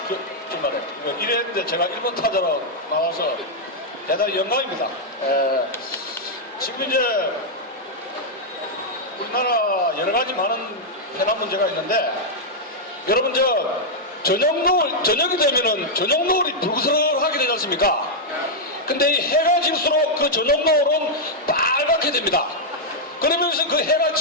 이랬는데 제가 1번 타자로 나와서 대단히 영광입니다. 지금 이제 우리나라 여러 가지 많은 해남 문제가 있는데, 여러분 저녁이 되면은 저녁 노을이 불그스름하게 되지 않습니까? 근데 이 해가 질수록 그 저녁 노을은 빨갛게 됩니다. 그러면서 그 해가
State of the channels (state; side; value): normal; both; correlation -0.04